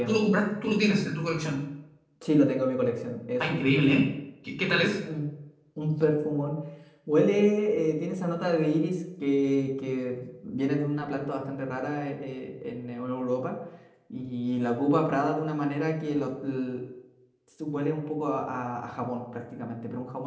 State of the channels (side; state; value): both; identical; correlation 1.00